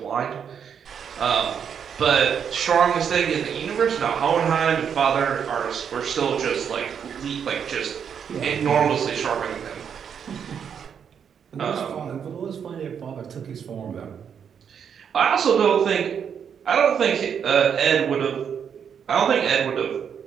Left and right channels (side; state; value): left; quieter; 7.6 dB